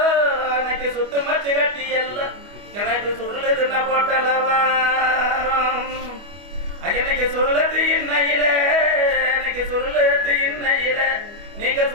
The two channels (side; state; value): left; late; 25 ms